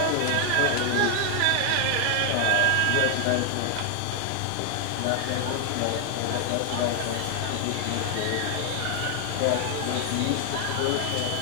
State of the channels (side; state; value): both; different; correlation 0.00